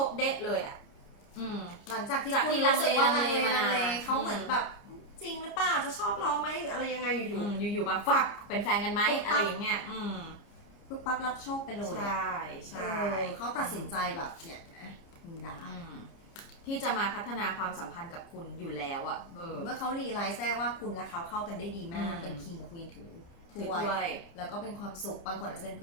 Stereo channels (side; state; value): right; late; 29 ms